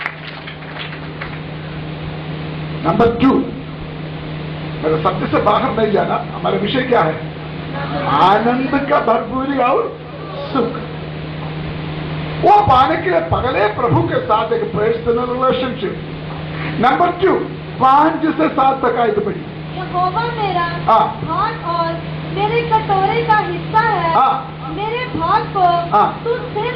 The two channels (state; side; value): identical; both; correlation 1.00